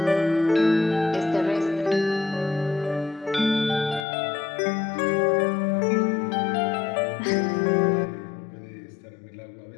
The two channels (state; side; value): drops out; right; at 4.0 s